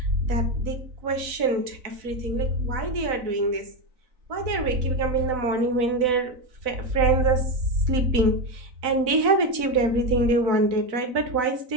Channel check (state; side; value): late; left; 4.0 ms